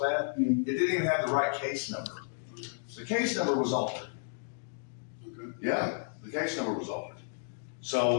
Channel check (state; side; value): silent; right; digital silence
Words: It didn't even have the right case number. The case number was altered. Okay. Yeah, the case number was altered.